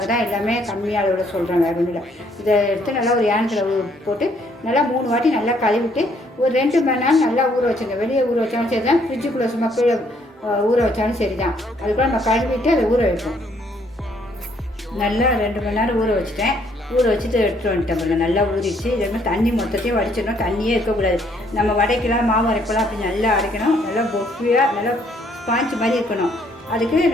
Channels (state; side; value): normal; both; correlation 0.67